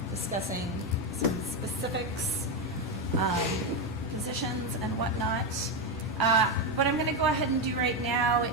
discussing some specifics, positions and whatnot. What I'm going to go ahead and do right now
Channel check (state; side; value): normal; both; correlation 0.09